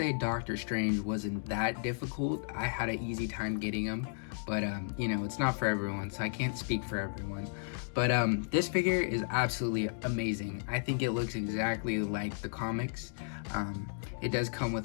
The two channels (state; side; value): silent; right; digital silence